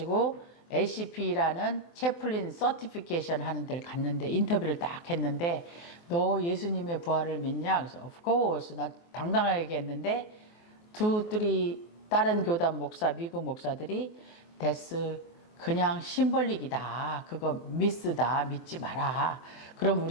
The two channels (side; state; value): right; late; 24 ms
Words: ACP라는 채플린 서티피케이션 하는 데를 갔는데 인터뷰를 딱 했는데 너 예수님의 부활을 믿냐? 그래서 of course 나 당당하게 얘기했는데 2, 3 다른 교단 목사 미국 목사들이 데스 그냥 심벌릭이다. 그거 미스다. 믿지 마라. 그럼